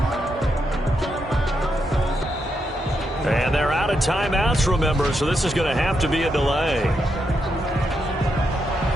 And they're out of timeouts, remember, so this is going to have to be a delay.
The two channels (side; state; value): both; normal; correlation 0.82